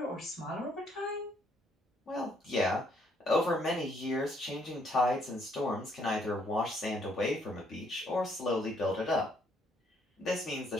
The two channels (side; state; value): both; normal; correlation 0.69